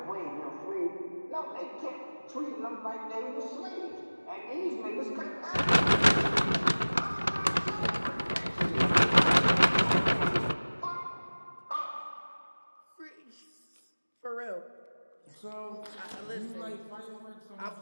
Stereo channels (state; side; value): inverted; both; correlation -1.00